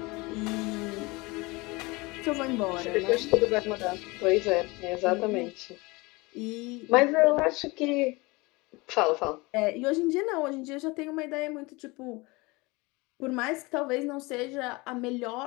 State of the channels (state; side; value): quieter; right; 24.4 dB